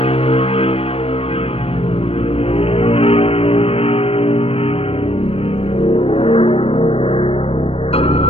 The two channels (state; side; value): late; right; 0.28 ms